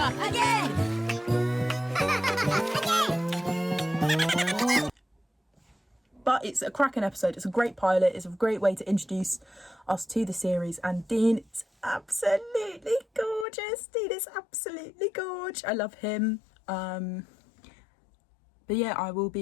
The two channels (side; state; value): right; drops out; at 13.5 s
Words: But it's a cracking episode. It's a great pilot. It's a great way to introduce us to the series. And Dean is absolutely gorgeous. Dean is absolutely gorgeous. I love him. But yeah, I will